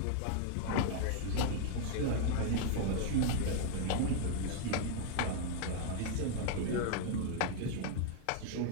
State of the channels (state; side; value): different; both; correlation 0.00